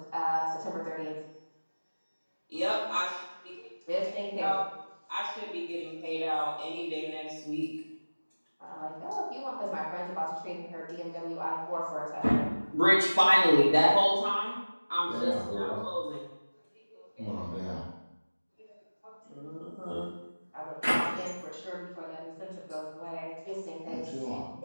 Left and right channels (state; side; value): inverted; both; correlation -1.00